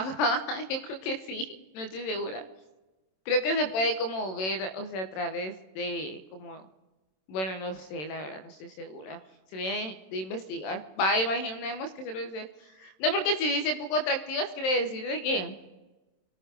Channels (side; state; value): right; late; 27 ms